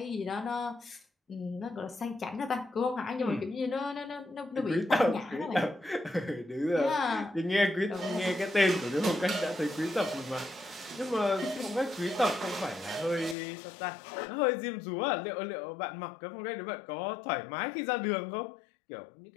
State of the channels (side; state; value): right; drops out; at 13.4 s